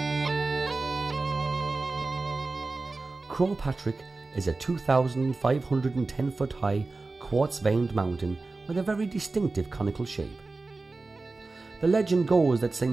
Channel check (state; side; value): quieter; left; 3.6 dB